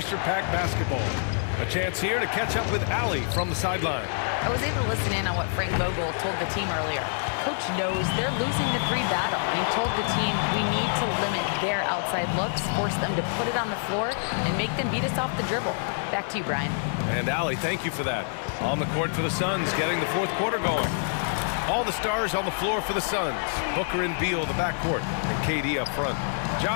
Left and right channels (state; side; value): silent; right; digital silence